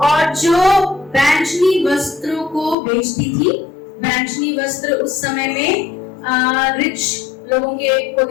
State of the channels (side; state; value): right; drops out; at 2.8 s